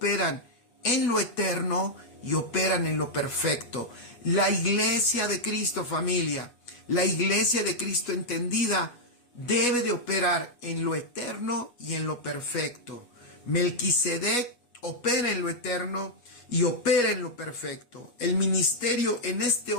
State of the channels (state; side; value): late; right; 8.2 ms